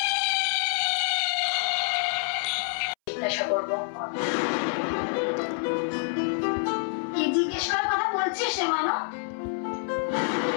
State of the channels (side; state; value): right; silent; 60 dB below the other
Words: জিজ্ঞাসা করবো। কি জিজ্ঞেস করার কথা বলছিস সে মানো?